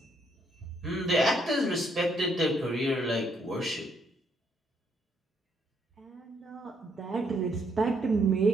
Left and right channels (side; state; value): both; normal; correlation 0.72